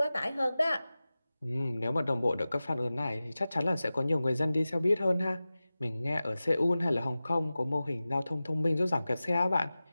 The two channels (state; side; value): inverted; both; correlation -0.96